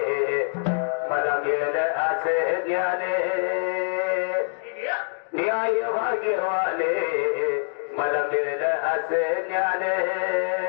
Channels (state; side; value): silent; right; digital silence